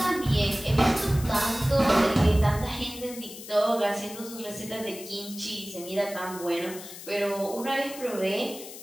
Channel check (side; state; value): left; noise; hiss, 13 dB below the sound